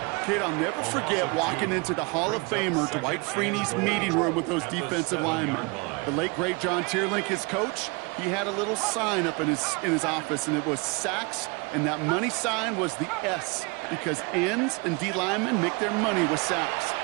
Kid, I'll never forget walking into the Hall of Famer Dwight Freeney's meeting room with those defensive linemen. The late, great John Tierlink, his coach, he had a little sign up in his office, and it was sacks, and that money sign was the S, because ends and D linemen make their money with sacks.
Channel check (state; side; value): quieter; left; 29.3 dB